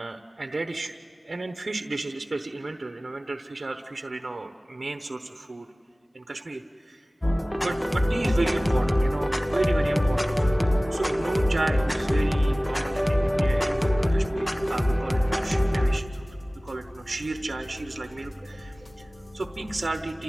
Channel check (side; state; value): both; normal; correlation 0.98